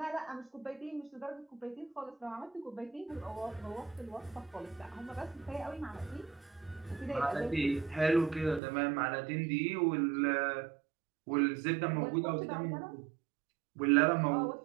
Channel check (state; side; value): drops out; left; at 8.6 s